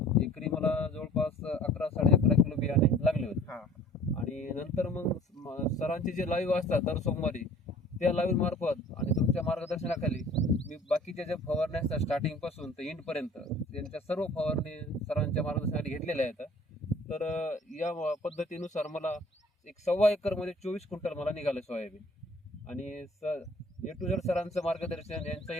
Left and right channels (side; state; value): both; normal; correlation 0.50